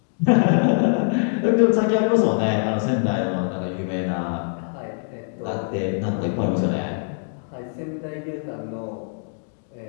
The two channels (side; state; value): right; silent; digital silence